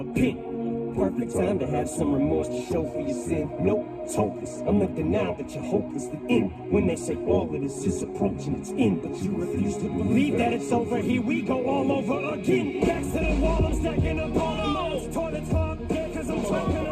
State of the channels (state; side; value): identical; both; correlation 1.00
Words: pen. Perfect time to have some remorse to show for your sin. Nope, it's hopeless. I'm the denial that you're hopelessly in. When they say all of this is approaching its end, but you refuse to believe that it's over. Here we go all over again. Back to the wall, I'm stacking up all the modes. Toilets hog, yeah, cause I'm talking a